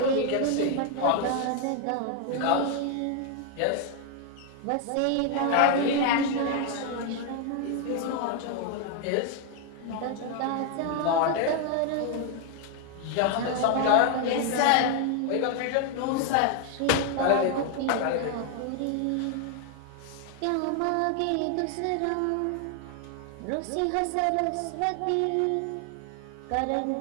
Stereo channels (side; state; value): both; different; correlation 0.00